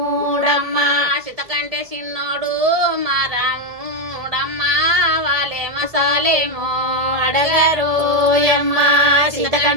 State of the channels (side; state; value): left; late; 1.7 ms